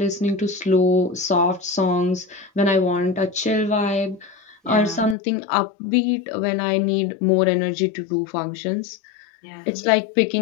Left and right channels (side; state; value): right; drops out; at 5.2 s